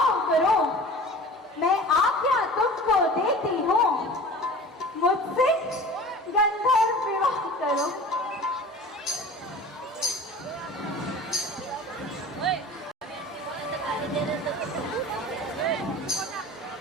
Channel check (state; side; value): normal; both; correlation 0.40